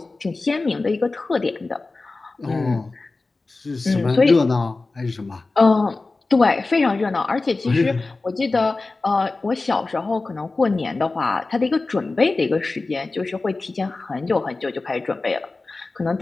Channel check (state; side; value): quieter; right; 3.5 dB